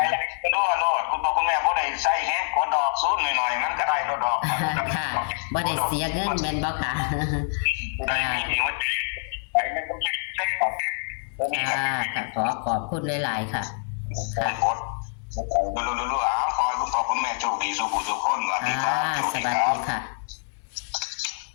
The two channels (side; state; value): right; silent; digital silence